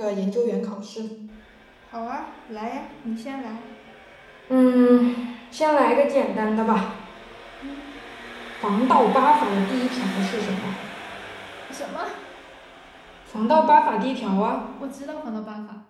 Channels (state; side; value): identical; both; correlation 1.00